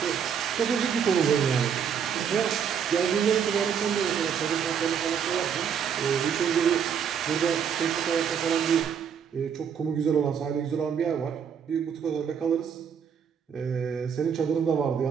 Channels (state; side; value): quieter; left; 7.6 dB